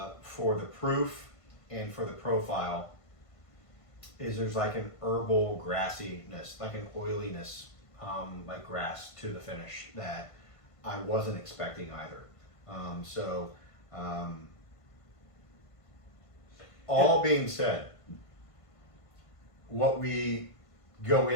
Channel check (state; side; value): late; right; 1.5 ms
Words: for the proof and for the profile, is there's like an herbal grassiness, like an oiliness, like grass to the finish that I wasn't expecting either. All being said, what we go